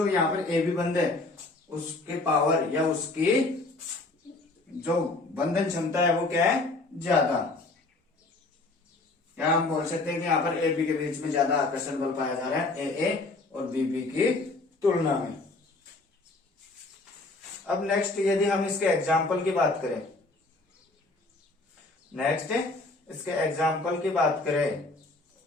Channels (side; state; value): right; quieter; 3.1 dB